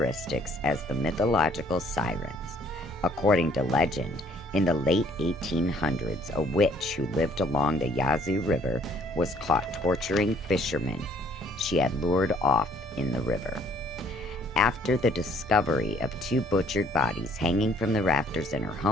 as the mythological sirens. According to legend, in the late 1800s, a witch who lived along the Yazoo River was caught torturing fishermen she had lured off in the river. After the discovery of 2 butchered bodies hanging from the rafters in her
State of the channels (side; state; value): both; normal; correlation 0.61